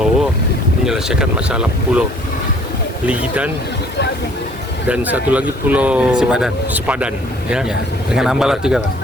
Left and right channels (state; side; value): normal; both; correlation 0.57